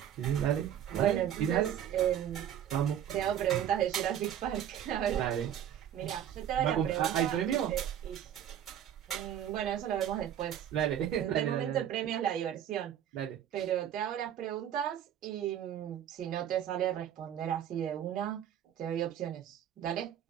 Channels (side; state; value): left; quieter; 10.2 dB